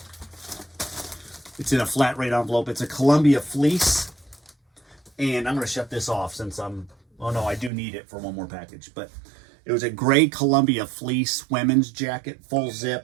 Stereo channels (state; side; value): drops out; left; at 7.7 s